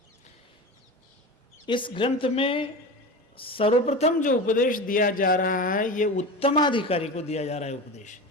इस ग्रंथ में सर्वप्रथम जो उपदेश दिया जा रहा है, यह उत्तमाधिकारी को दिया जा रहा है। उपदेश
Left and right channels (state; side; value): normal; both; correlation 0.28